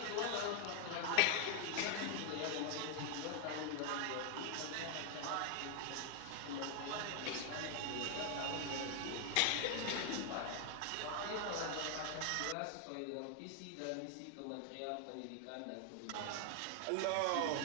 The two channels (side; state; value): both; different; correlation 0.00